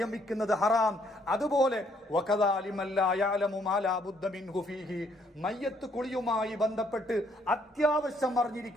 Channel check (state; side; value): normal; both; correlation 0.68